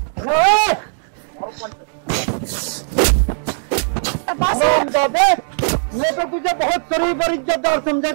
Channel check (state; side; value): silent; left; 67 dB below the other